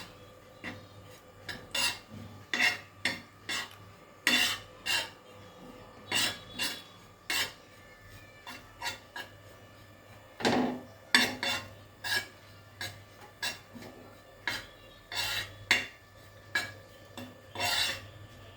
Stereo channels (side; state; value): both; identical; correlation 1.00